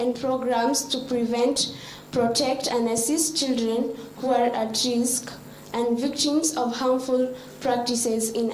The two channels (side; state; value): both; identical; correlation 1.00